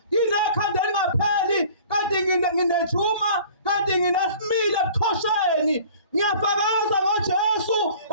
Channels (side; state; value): both; inverted; correlation -0.48